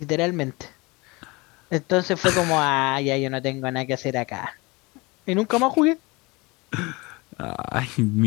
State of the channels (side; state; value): right; quieter; 25.0 dB